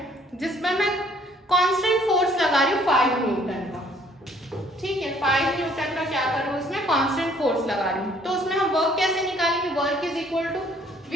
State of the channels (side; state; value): both; normal; correlation 0.61